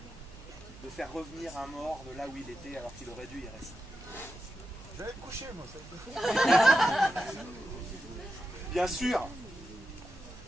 de faire revenir un mort de là où il était alors qu'il aurait dû y rester. Je vais me coucher, moi. Ça. Bien sûr,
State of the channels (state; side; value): noise; right; hum, 18 dB below the sound